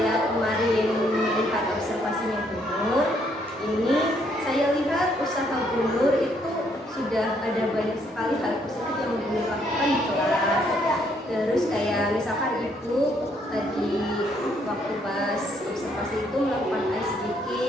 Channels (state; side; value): normal; both; correlation 0.70